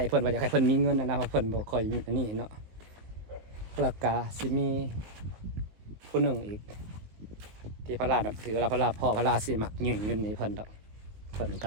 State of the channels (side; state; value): left; late; 19 ms